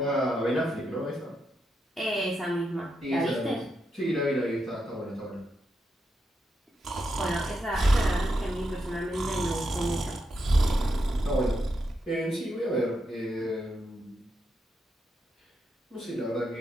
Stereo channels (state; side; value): normal; both; correlation 0.83